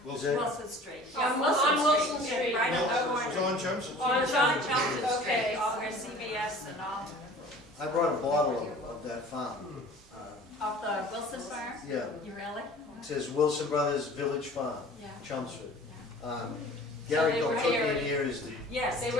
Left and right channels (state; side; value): normal; both; correlation 0.45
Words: Wilson. Wilson Street. On Yeah, Wilson Street. Right on the No, corner. John Chelmsford. On John Chelmsford Street, Okay. all where CVS and all, I brought a bottle of that farm. of the Wilson farm? Yeah, You really? it says Wilson Brothers Village Farm, Yeah. Chelmsford. Gary So they were Galtugian dairy. here is the, Yes, They